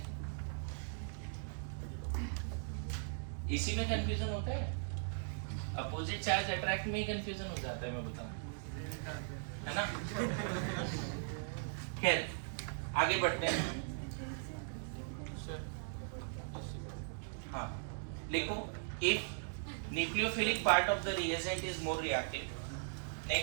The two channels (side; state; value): left; silent; digital silence